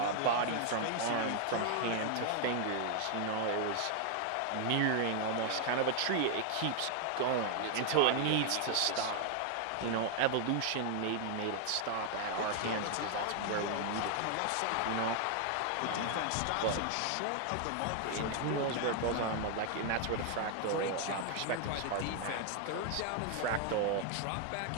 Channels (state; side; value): different; both; correlation 0.00